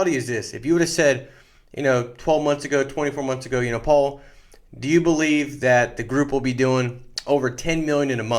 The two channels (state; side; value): identical; both; correlation 1.00